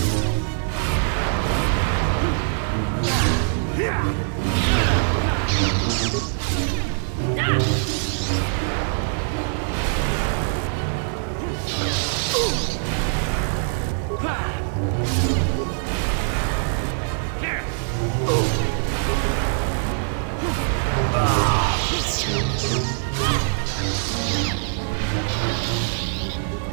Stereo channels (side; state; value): left; silent; digital silence